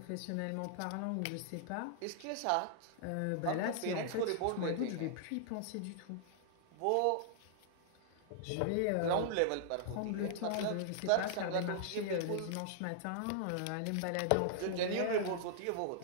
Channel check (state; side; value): different; both; correlation -0.01